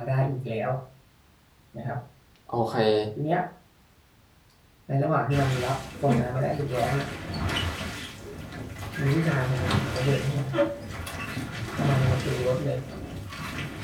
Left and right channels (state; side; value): identical; both; correlation 1.00